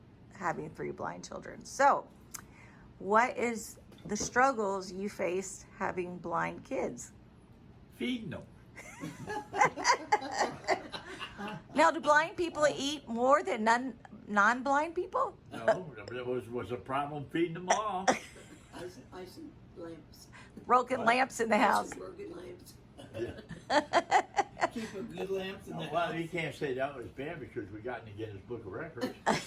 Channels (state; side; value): identical; both; correlation 1.00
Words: having 3 blind children. So, what is the struggles you faced having blind kids? Feeding them. Now, do blind people eat more than non-blind people? No, there was a problem feeding them all. I see lamps. Broken lamps in the house. Broken lamps. Keeping good lamps in the Well, house. you can't say that was bad because we got in the Guinness Book of Records.